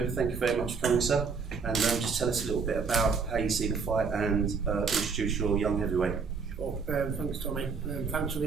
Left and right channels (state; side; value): quieter; left; 5.3 dB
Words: thank you very much for coming, sir. And just tell us a little bit about how you see the fight and introduce your young heavyweight. Sure. Thanks, Tommy. Thanks for